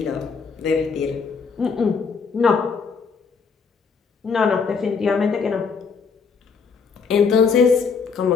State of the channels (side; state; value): right; quieter; 5.5 dB